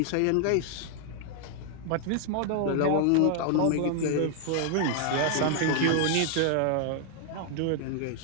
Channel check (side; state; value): both; different; correlation 0.00